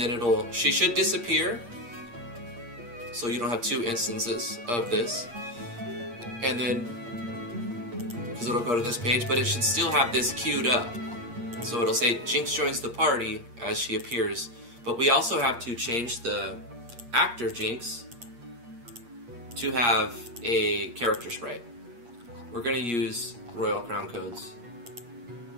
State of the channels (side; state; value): left; late; 8.5 ms